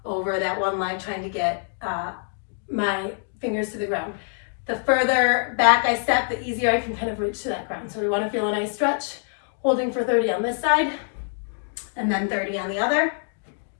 over that one leg, trying to get my fingers to the ground. The further back I step, the easier I can kind of reach to that ground. So we want to feel a nice stretch, holding for 30 on this side, and then 30 on the other.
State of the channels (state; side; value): silent; right; digital silence